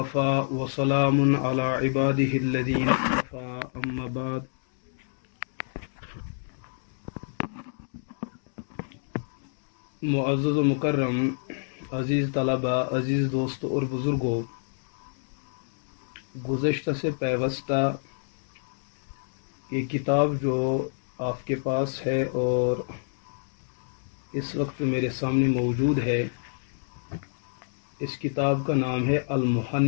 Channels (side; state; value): right; silent; digital silence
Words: وسلام علی عبادہ الذین اصطفیٰ اما بعد۔ معزز و مکرم عزیز طلباء، عزیز دوستوں اور بزرگوں، گزشتہ سے پیوستہ یہ کتاب جو آپ کے پاس ہے اور اس وقت میرے سامنے موجود ہے، اس کتاب کا نام ہے